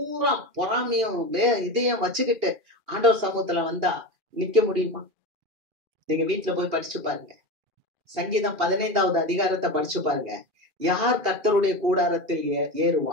பொறாமையும் இதையும் வச்சுக்கிட்டு ஆண்டவர் சமூகத்துல வந்தா நிக்க முடியுமா? நீங்க வீட்டுல போய் படிச்சு பாருங்க. சங்கீதம் 15வது அதிகாரத்தை படிச்சு பாருங்க. யார் கர்த்தருடைய கூடாரத்தில்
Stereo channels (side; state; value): left; late; 2.4 ms